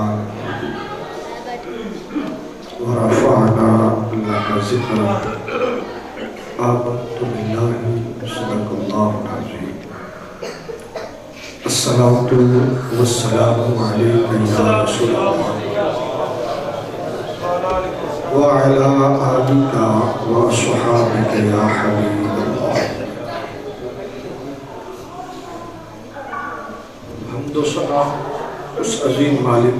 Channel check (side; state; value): both; identical; correlation 1.00